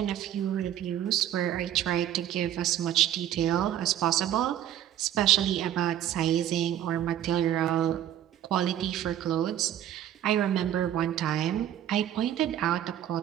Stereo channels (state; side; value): quieter; left; 11.4 dB